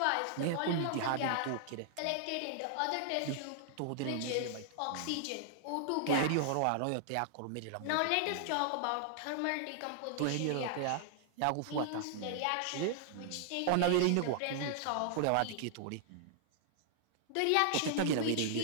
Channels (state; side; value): different; both; correlation -0.01